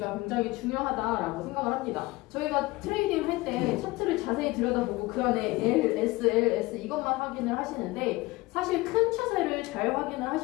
굉장히 중요하다라고 생각을 합니다. 저희가 트레이딩 할 때 차트를 자세히 들여다보고 그 안에 L, S, L, S 이것만 확인을 하시는데 사실 큰 추세를 잘 확인을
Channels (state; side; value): quieter; right; 21.1 dB